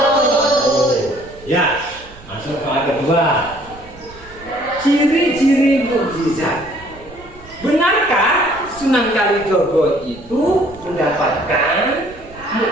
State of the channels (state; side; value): noise; right; rumble, 20 dB below the sound